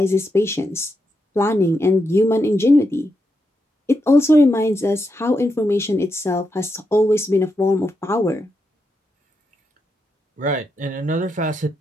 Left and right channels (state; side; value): normal; both; correlation 0.84